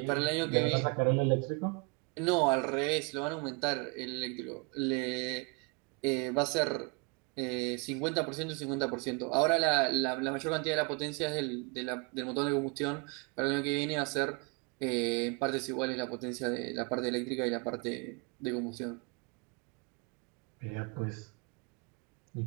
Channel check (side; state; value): left; quieter; 31.9 dB